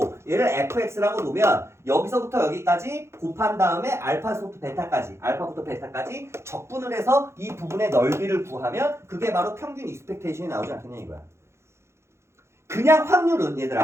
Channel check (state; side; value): late; left; 0.13 ms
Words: 얘를 fx라고 놓으면 여기서부터 여기까지 곱한 다음에 알파부터 베타까지 적분을 해서 이 부분의 넓이를 구하면 그게 바로 평균 익스펙테이션이 나오지 않겠냐 이거야. 그냥 확률은